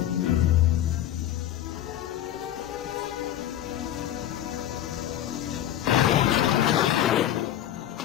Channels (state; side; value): quieter; right; 11.8 dB